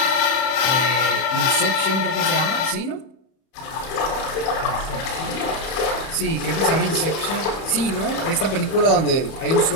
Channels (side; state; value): right; late; 31 ms